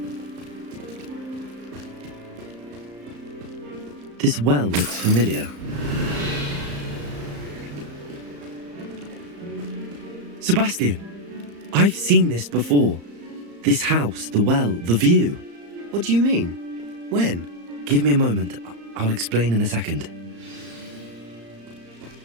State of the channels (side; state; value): left; late; 35 ms